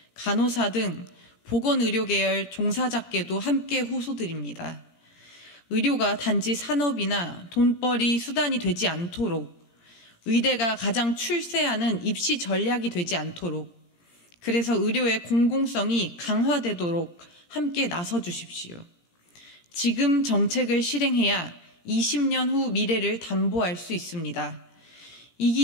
간호사 등 보건의료계열 종사자께도 함께 호소드립니다. 의료가 단지 산업이나 돈벌이 수단이 되지 않도록, 의대가 가장 출세하는 입시 전략이 되지 않도록, 그래서 의료의 공공성이 강화되도록 함께 나서 주십시오. 지금 정책을 실행해야 20년 후 미래를 담보할 수 있습니다.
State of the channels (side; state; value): right; late; 17 ms